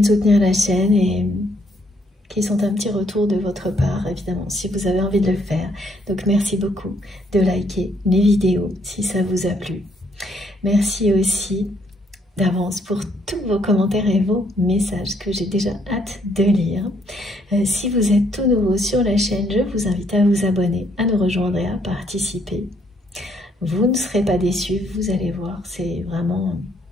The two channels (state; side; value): normal; both; correlation 0.70